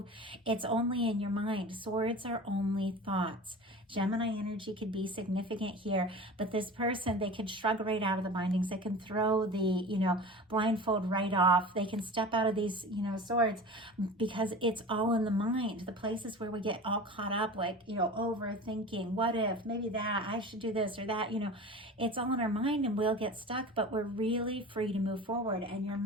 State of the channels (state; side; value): normal; both; correlation 0.35